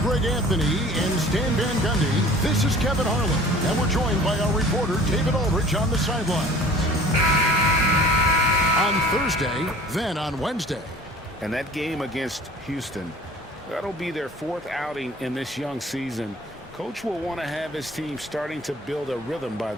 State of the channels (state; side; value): normal; both; correlation 0.46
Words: Anthony and Stan Van Gundy. This is Kevin Harlan, and we're joined by our reporter David Aldridge on the sideline. On Thursday, then on Wednesday. And that game against Houston, that'll be their fourth outing in this young season. Coach will want to have his team starting to build a rhythm by